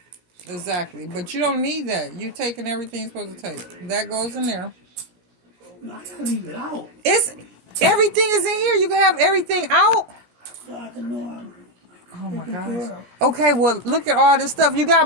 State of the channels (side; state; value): left; late; 17 ms